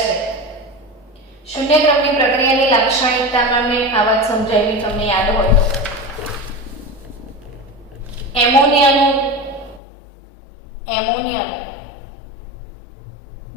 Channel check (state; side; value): drops out; right; at 9.8 s